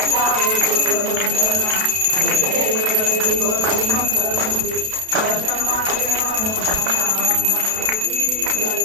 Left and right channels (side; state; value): left; late; 32 ms